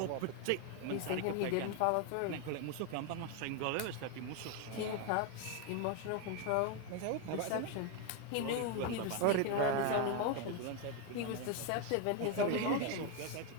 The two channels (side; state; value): both; different; correlation 0.01